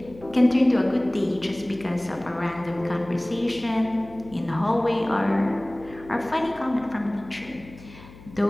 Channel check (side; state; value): left; noise; hum, 20 dB below the sound